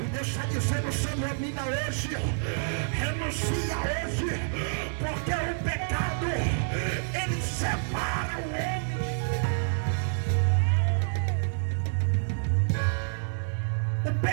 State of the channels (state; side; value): silent; left; 59 dB below the other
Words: e Deus está dizendo: se examina hoje, renuncia hoje, porque o pecado, ele separa o homem. O